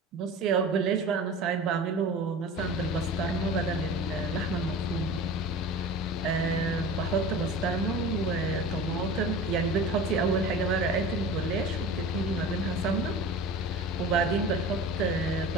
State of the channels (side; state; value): both; normal; correlation 0.35